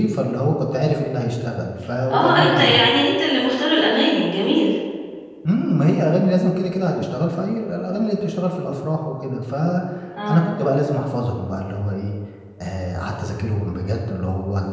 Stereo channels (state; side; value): identical; both; correlation 1.00